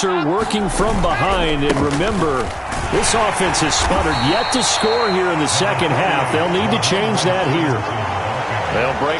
working from behind. And remember, this offense has sputtered yet to score here in the second half. They'll need to change that here. They'll break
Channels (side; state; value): both; identical; correlation 1.00